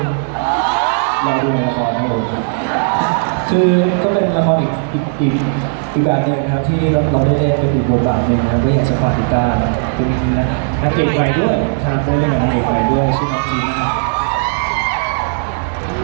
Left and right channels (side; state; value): left; silent; digital silence